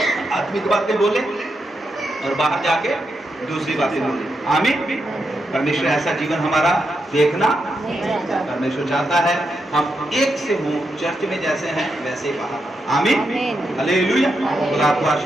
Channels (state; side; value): normal; both; correlation 0.84